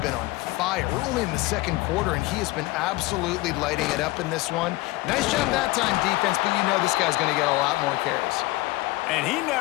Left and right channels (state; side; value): quieter; right; 20.4 dB